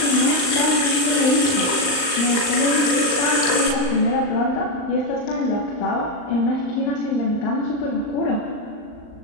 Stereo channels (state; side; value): late; right; 39 ms